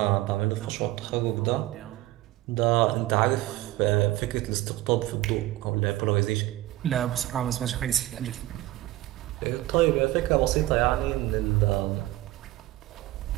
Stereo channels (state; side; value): quieter; left; 16.7 dB